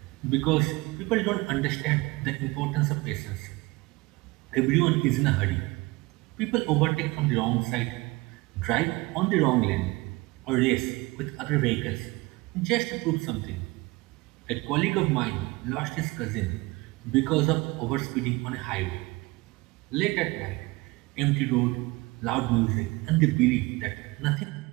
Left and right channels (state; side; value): quieter; left; 23.0 dB